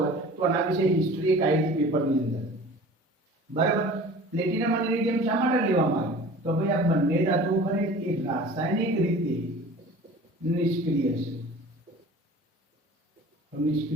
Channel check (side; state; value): both; normal; correlation 0.43